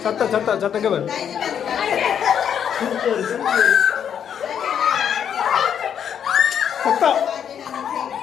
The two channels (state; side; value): quieter; right; 8.5 dB